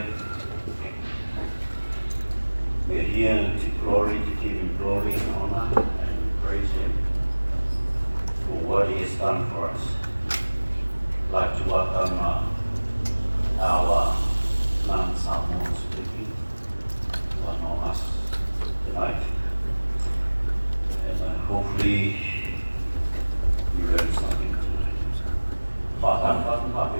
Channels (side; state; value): both; inverted; correlation -1.00